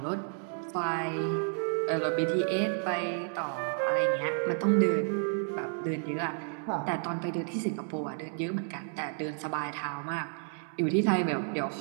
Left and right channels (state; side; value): silent; left; 57 dB below the other